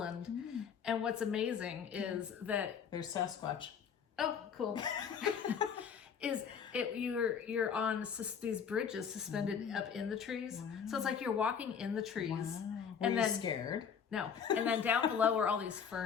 And what's amazing is that there's Sasquatch. Oh, cool. You're on these bridges suspended up in the trees. Wow. So it's like you're walking in the trees. Wow. And then scared? No. And then down below are all these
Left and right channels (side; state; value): right; quieter; 7.1 dB